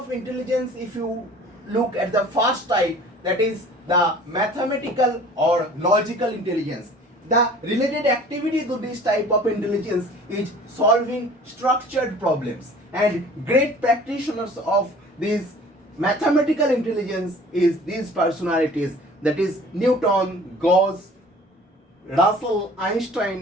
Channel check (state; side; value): normal; both; correlation 0.47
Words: intelligence, if you look at the first type, that is the mathematical or logical intelligence. The related activity to this type of intelligence is solving structured problems, and great practitioners of this mathematical intelligence is these personalities, that is Newton, Gauss, Russell,